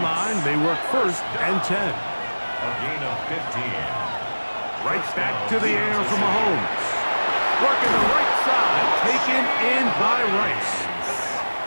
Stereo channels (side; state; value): both; inverted; correlation -1.00